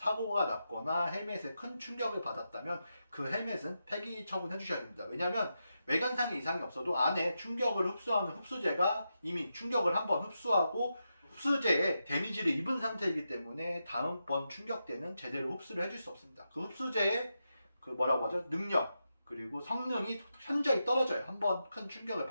났거나 헬멧에 큰 충격을 받았다면 그 헬멧은 폐기 처분해 주셔야 됩니다. 왜냐하면 외관상에 이상이 없어도 안에 충격을 흡수하는 흡수제가 이미 충격을 한번 흡수하고 흡수제에 데미지를 입은 상태이기 때문에 다음번 충격 때는 제대로 흡수를 해줄 수 없습니다. 그 흡수제의 그 뭐라고 하죠? 능력 그리고 성능이 현저히 떨어져요. 한번 큰 충격을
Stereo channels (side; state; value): both; inverted; correlation -0.87